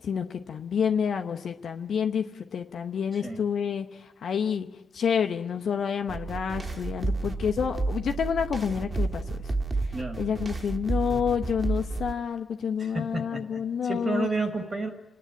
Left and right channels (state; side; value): quieter; right; 3.7 dB